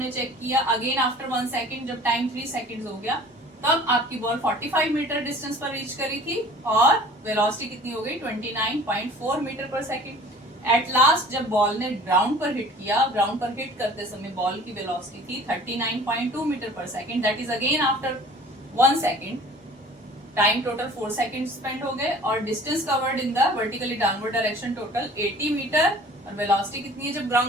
चेक किया अगेन आफ्टर 1 सेकेंड, जब टाइम 3 सेकेंड हो गया, तब आपकी बॉल 45 मीटर डिस्टेंस पर रीच करी थी, और वेलोसिटी कितनी हो गई, 29.4 metre per second. At last जब बॉल ने ग्राउंड पर हिट किया, ग्राउंड पर हिट करते समय बॉल की वेलोसिटी थी 39.2 metre per second, that is again after 1 second. Time total 4 second spend हो गए, और distance covered in the vertically downward direction total 80 metre, और वेलोसिटी कितनी है जब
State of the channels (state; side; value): normal; both; correlation 0.47